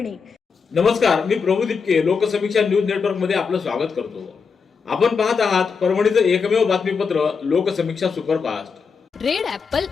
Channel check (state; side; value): quieter; right; 5.6 dB